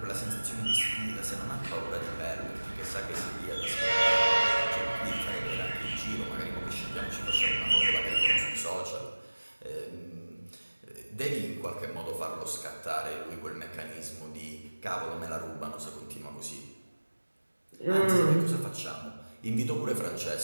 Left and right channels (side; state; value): both; inverted; correlation -1.00